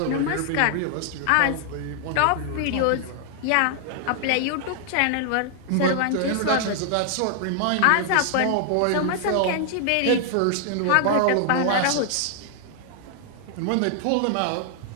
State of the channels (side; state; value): both; different; correlation 0.00